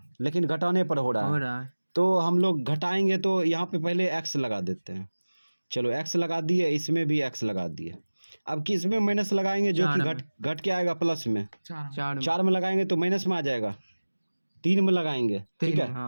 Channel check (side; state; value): both; inverted; correlation -1.00